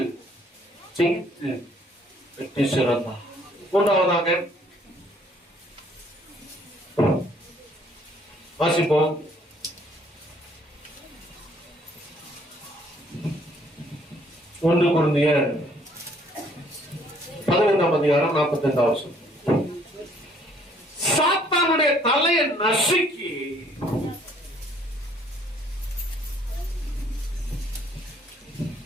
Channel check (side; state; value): both; normal; correlation 0.62